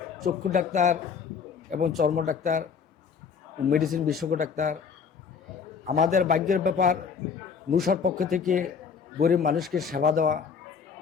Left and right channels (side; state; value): right; quieter; 6.3 dB